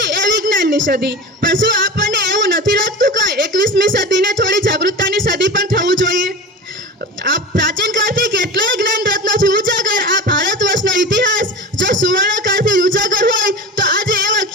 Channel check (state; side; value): normal; both; correlation 0.31